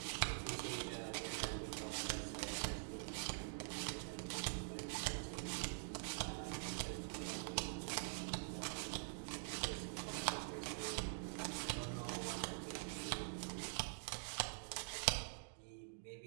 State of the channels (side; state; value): left; silent; digital silence